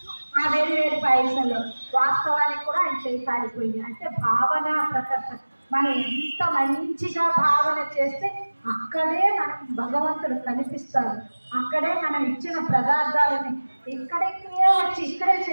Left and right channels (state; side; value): inverted; both; correlation -1.00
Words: ఆ వేడి పాయసంలో వాస్తవానికి కూడా ఆయన చేయి కాలిపోయింది. అంటే భావన ప్రకర్త. మనం ఎంత మంచిగా భావన చేస్తే అక్కడే మనకు భగవంతుడు కనిపిస్తాడు. అక్కడే మనం ఇచ్చిన పదార్థాలని ఇక్కడికే వచ్చి ఇక్కడే